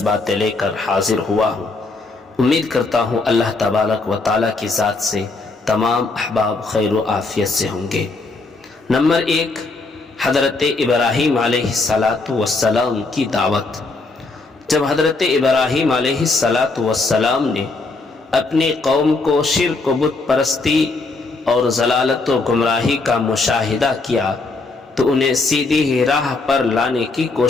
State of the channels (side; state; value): right; quieter; 3.6 dB